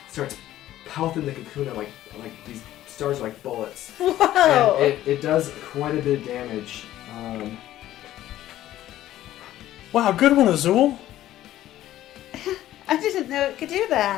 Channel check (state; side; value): quieter; right; 13.7 dB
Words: starts pelting the Kakuna like these stars are like bullets. Whoa! And it does quite a bit of damage. wow, good one, Azul. I didn't know it could do